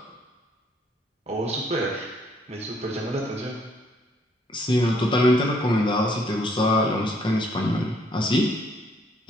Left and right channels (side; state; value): both; normal; correlation 0.67